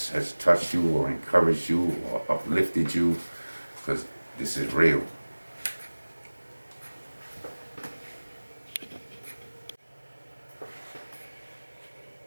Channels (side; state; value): both; inverted; correlation -1.00